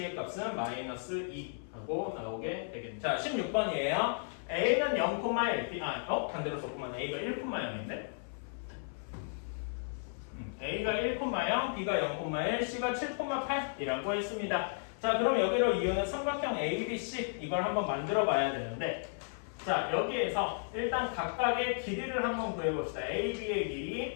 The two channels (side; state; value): right; silent; 55 dB below the other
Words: 값은 마이너스 2 하고 나오게 되겠죠. 자, 16번이에요. A는 0,1, 반대로 썼구만. A가 1,0인데 A가 1,0, B가 0,1, C가 7,8이라고 했습니다. 자, 그럼 여기로 이유는 삼각형 ABC 이걸 한번 만들어 봐야 되는데 자, 여기에서 일단 각각의 길이를 한번 구해봅시다. AB의